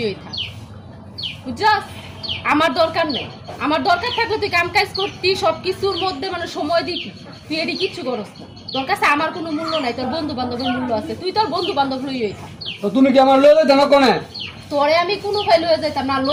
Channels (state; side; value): identical; both; correlation 1.00